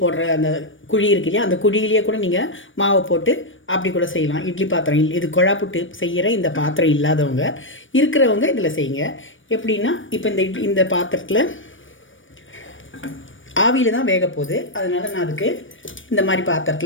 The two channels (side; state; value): right; late; 0.56 ms